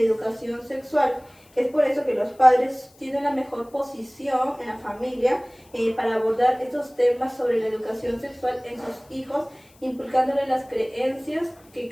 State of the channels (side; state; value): left; noise; hiss, 29 dB below the sound